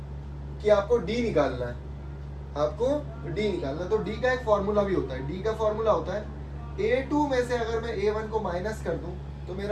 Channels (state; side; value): identical; both; correlation 1.00